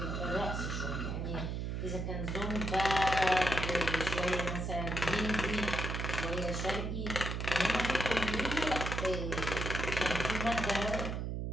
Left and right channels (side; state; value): right; noise; hum, 2 dB below the sound